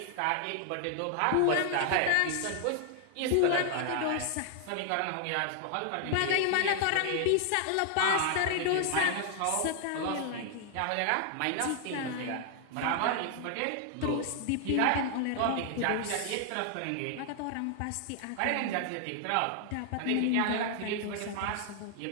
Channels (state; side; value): different; both; correlation 0.00